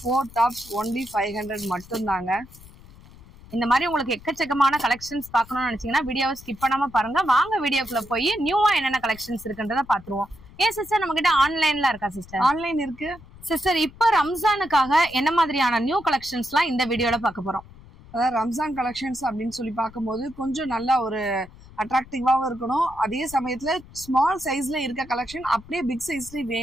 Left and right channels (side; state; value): left; noise; rumble, 21 dB below the sound